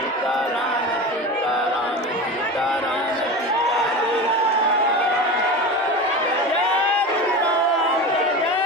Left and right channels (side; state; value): both; normal; correlation 0.28